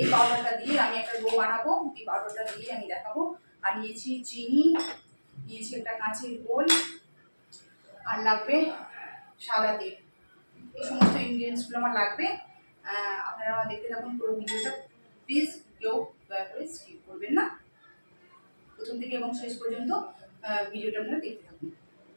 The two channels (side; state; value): both; inverted; correlation -1.00